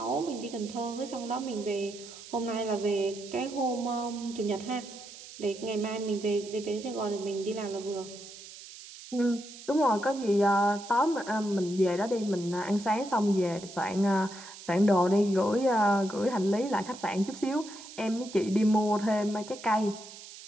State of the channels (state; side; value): noise; right; hiss, 16 dB below the sound